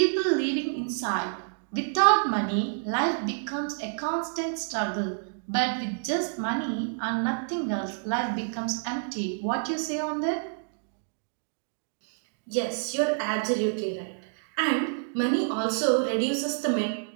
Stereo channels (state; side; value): silent; left; digital silence